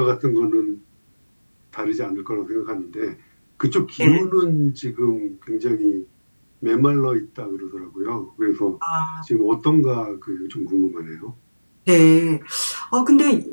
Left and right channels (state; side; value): inverted; both; correlation -1.00